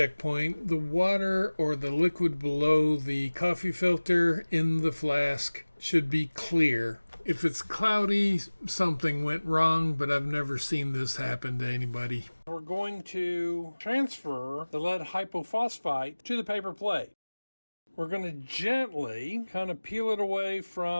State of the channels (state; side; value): inverted; both; correlation -1.00